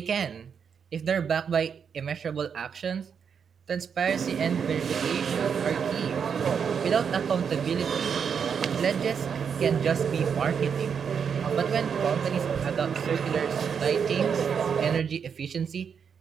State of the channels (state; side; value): quieter; left; 6.9 dB